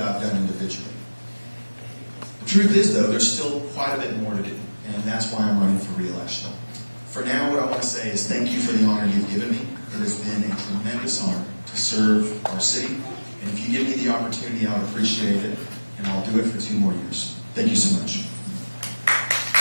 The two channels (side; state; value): both; inverted; correlation -1.00